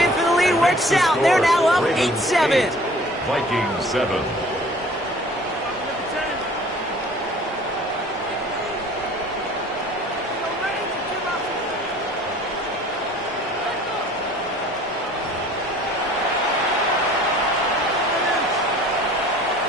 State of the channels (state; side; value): normal; both; correlation 0.49